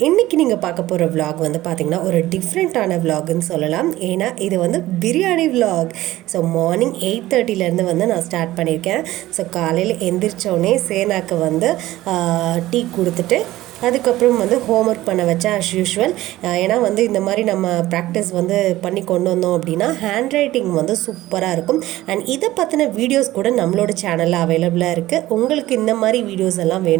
இன்றைக்கி நீங்கள் பார்க்க போகிற விலாக் வந்து பார்த்திங்கன்னா ஒரு டிஃப்ரெண்ட்டான விலாக்னு சொல்லலாம். ஏன்னா இது வந்து பிரியாணி விலாக். ஸோ மார்னிங் 8:30 வந்து நான் ஸ்டார்ட் பண்ணியிருக்கேன். ஸோ காலையில் எந்திரிச்சோடனே சேனாக்கு வந்து டீ கொடுத்துட்டு அதுக்கப்புறம் வந்து ஹோம்ஒர்க் பண்ண வச்சேன் அஸ் யூஷுவல். ஏன்னா வந்து இந்த மாதிரி நம்ம ப்ராக்டிஸ் வந்து பண்ணி கொண்டு வந்தோம் அப்படின்னா ஹேண்ட் ரைட்டிங் வந்து சூப்பராக இருக்கும். அண்ட் இதை பற்றின வீடியோஸ் கூட நம்மளோட சேனலில் அவைலபிளாக இருக்குது. உங்களுக்கு இந்த மாதிரி வீடியோஸ் எல்லாம்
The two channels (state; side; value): quieter; left; 16.2 dB